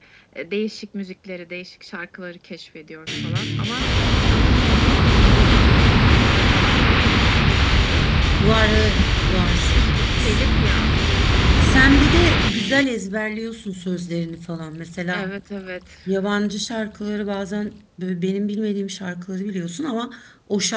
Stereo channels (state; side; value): identical; both; correlation 1.00